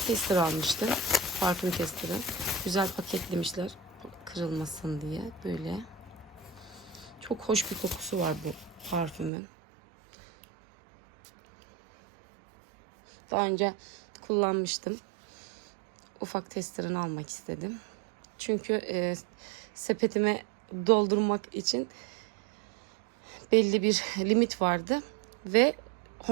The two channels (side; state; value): left; drops out; at 9.3 s